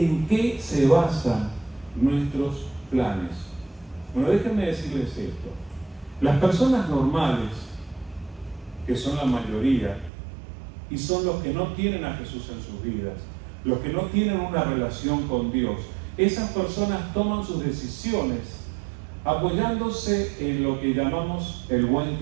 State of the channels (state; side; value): drops out; left; at 10.1 s